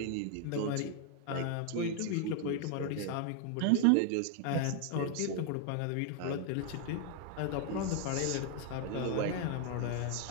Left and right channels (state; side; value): different; both; correlation 0.00